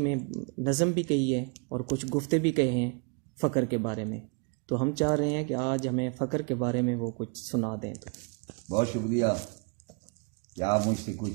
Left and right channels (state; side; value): quieter; left; 34.6 dB